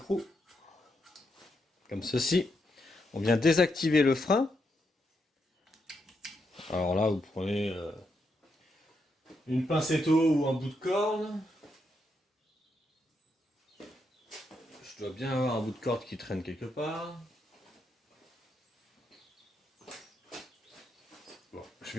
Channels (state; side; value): normal; both; correlation 0.81